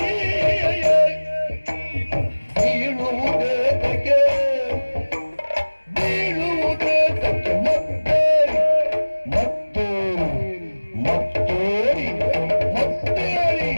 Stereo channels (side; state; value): both; inverted; correlation -1.00